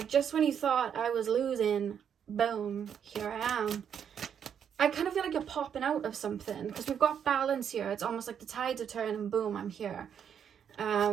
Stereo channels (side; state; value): left; quieter; 8.1 dB